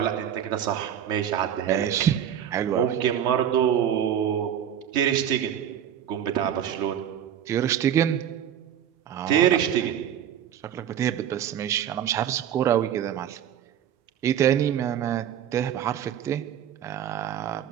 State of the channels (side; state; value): left; quieter; 9.7 dB